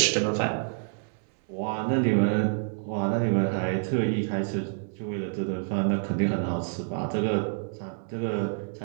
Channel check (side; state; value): left; silent; 60 dB below the other